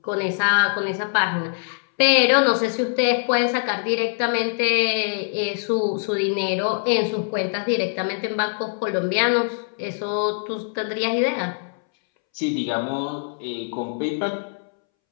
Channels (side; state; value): right; silent; 63 dB below the other